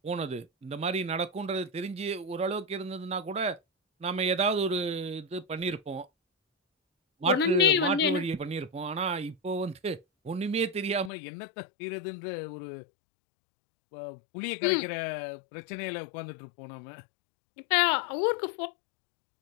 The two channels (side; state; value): right; drops out; at 11.1 s